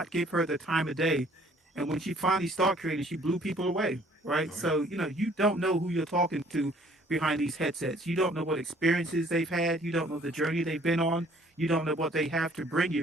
give her the time of day, and when she finally started creating, she blew people away, right? So you don't know who you're talking to behind these headsets. You don't know what experiences they've had. You don't know the journey they've been on. You don't know what they have to bring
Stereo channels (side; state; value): both; normal; correlation 0.58